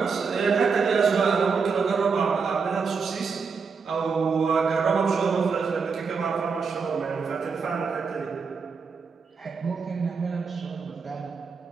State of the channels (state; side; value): quieter; left; 5.3 dB